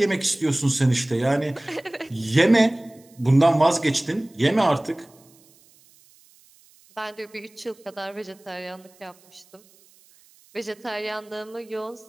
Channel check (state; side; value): noise; right; hiss, 29 dB below the sound